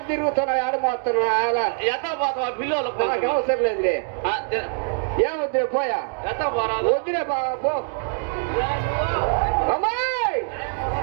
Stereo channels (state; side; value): silent; left; digital silence